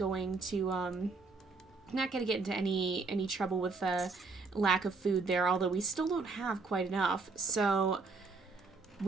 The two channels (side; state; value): left; quieter; 4.1 dB